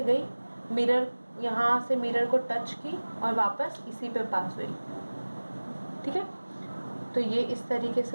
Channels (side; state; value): both; inverted; correlation -1.00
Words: गई, मिरर यहाँ से मिरर को टच की और वापस इसी पे पास हुई, ठीक है। तो ये इस तरीके